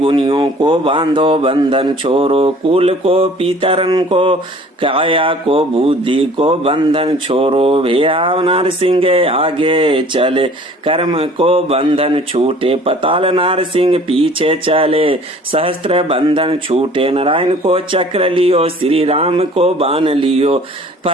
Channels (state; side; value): normal; both; correlation 0.50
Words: को बांधो बंधन छोरो कुल को पितरन को काया को बुद्धि को बंधन छोरो भैया नरसिंह आगे चले कर्म को बंधन छूटे पताल नरसिंह पीछे चले सहस्त्र बंधन छूटे नारायण को चक्र लियो श्री राम को बाण लियो